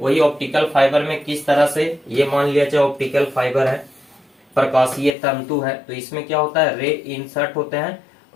ऑप्टिकल फाइबर में किस तरह से, ये मान लिया जाए ऑप्टिकल फाइबर है, प्रकाशीय तंतु है, तो इसमें क्या होता है, रे इंसर्ट होते हैं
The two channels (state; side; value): drops out; right; at 5.2 s